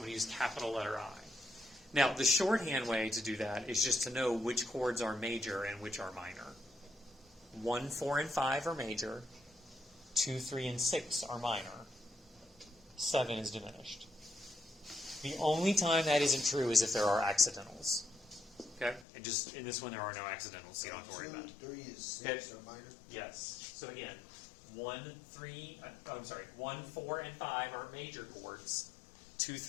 going to use capital letter I. Now, the shorthand way to do that is just to know which chords are major and which are minor. 1, 4, and 5 are major. 2, 3, and 6 are minor. 7 is diminished. The only time that isn't true is if there are accidentals. Okay? And just in this one, there are no accidentals, so you don't have to worry about it. 2, 3, and 6 Okay. are minor. Yes. So again, 1, 4, and 5 are major chords. 2,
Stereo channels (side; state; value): right; drops out; at 19.1 s